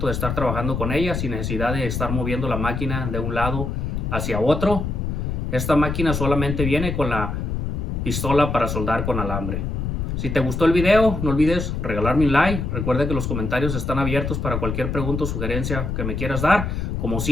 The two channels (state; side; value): noise; left; rumble, 2 dB below the sound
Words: de estar trabajando con ella sin necesidad de estar moviendo la máquina de un lado hacia otro. Esta máquina solamente viene con la pistola para soldar con alambre. Si te gustó el video, no olvides regalarme un like. Recuerda que los comentarios están abiertos para cualquier pregunta o sugerencia que me quieras dar. Como